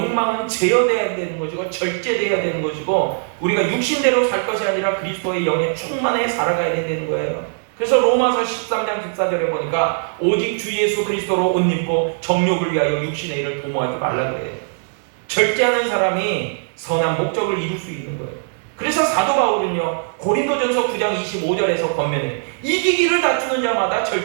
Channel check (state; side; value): silent; left; digital silence